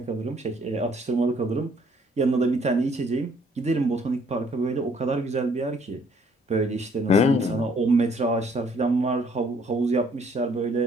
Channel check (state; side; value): normal; both; correlation 0.63